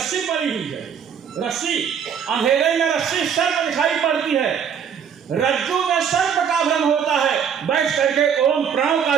पड़ी हुई है, रस्सी, अंधेरे में रस्सी सर्प दिखाई पड़ती है, रज्जू में सर्प का भ्रम होता है। बैठ करके ओम प्रणव का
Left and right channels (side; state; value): left; quieter; 7.7 dB